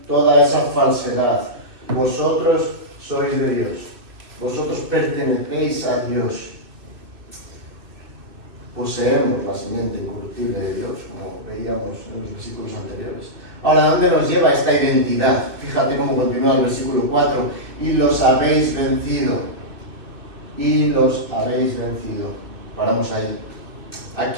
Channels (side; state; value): left; late; 2.6 ms